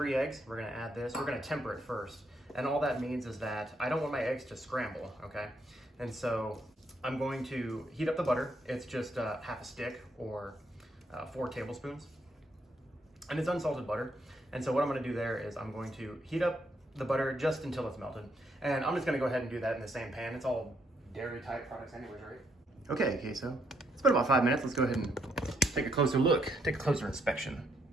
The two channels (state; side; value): normal; both; correlation 0.74